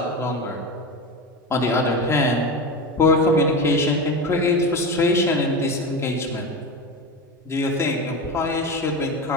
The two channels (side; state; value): both; normal; correlation 0.23